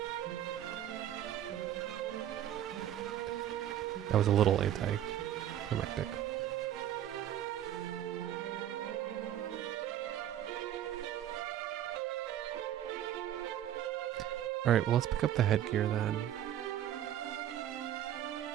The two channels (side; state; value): left; quieter; 11.4 dB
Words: That was a little anticlimactic. Alright, well let's pick up the headgear then.